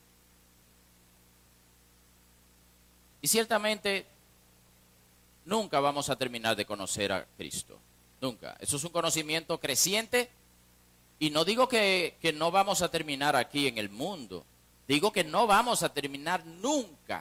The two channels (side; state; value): both; identical; correlation 1.00